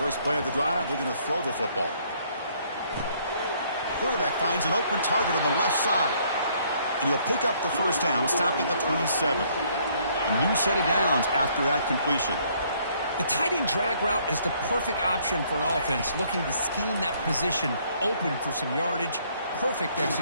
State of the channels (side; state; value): both; inverted; correlation -0.65